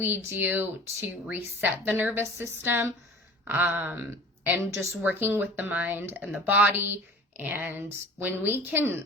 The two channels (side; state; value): both; normal; correlation 0.41